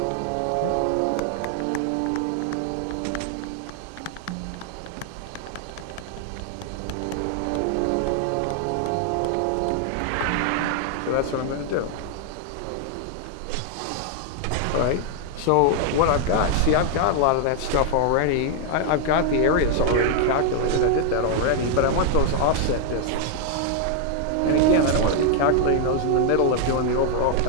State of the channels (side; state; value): both; different; correlation 0.00